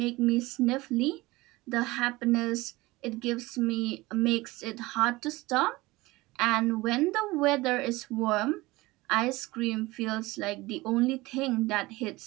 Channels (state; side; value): quieter; left; 20.8 dB